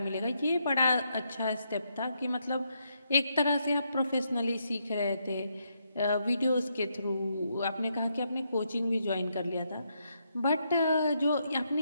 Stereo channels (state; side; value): inverted; both; correlation -0.78